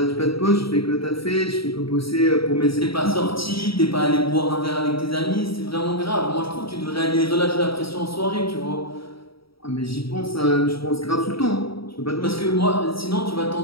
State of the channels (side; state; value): right; late; 0.75 ms